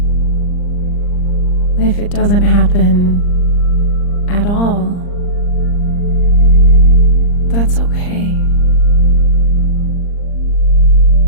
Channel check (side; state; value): right; late; 39 ms